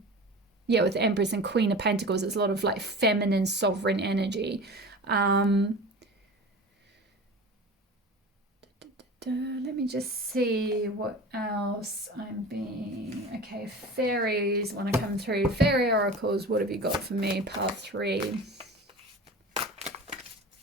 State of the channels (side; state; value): both; normal; correlation 0.35